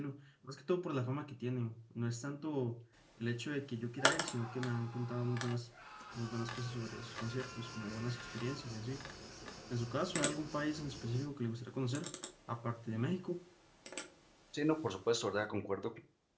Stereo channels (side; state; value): both; identical; correlation 1.00